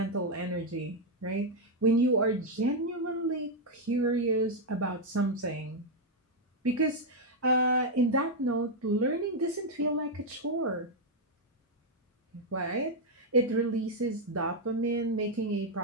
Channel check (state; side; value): normal; both; correlation 0.00